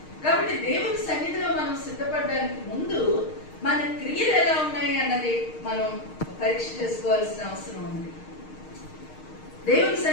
కాబట్టి దేవుని సన్నిధిలో మనం సిద్ధపడడానికి ముందు మన క్రియలు ఎలా ఉన్నాయి అన్నది మనం పరీక్ష చేసుకోవాల్సిన అవసరం ఉంది. దేవుని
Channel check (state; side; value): late; right; 6.5 ms